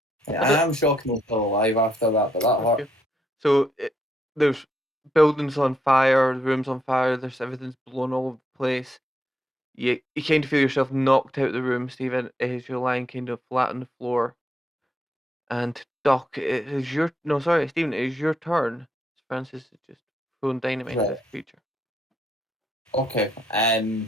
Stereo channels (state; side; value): normal; both; correlation 0.77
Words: Yeah, I am shockingly still alive after that, but that hurt. Okay. So there's buildings on fire, the room's on fire, there's everything's blown all over the place. You kind of feel yourself knocked out of the room, Stephen, as you're lying kind of flat on the floor. And Doc, it is your Stephen, it is your turn. Francis is just throwing dynamite at this creature. Okay.